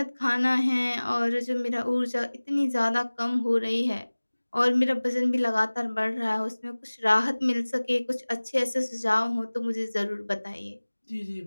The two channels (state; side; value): inverted; both; correlation -1.00